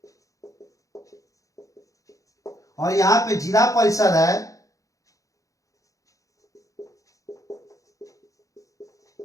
और यहाँ पे जिला परिषद है,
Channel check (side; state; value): right; late; 0.16 ms